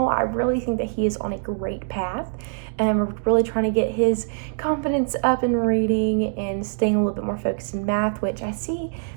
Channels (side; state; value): left; silent; digital silence